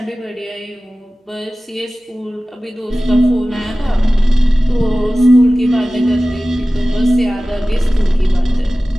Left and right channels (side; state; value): both; normal; correlation 0.96